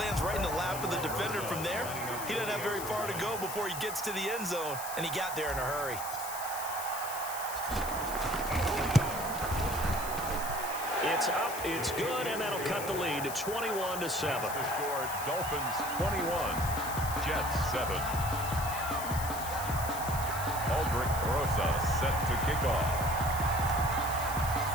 lands right in the lap of the defender from there. He doesn't have very far to go before he gets to the end zone, and he got there in a hurry. It's up, it's good, and that'll cut the lead to 21-7. The score, Dolphins 21, Jets 7. Aldrich Rosa set to kick off.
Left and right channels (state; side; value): noise; left; hiss, 8 dB below the sound